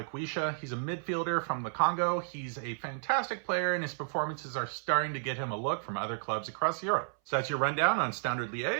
He's a midfielder from the Congo. He's a fantastic player, and his performances are starting to get him a look from other clubs across Europe. So that's your rundown on Standard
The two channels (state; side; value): silent; left; 56 dB below the other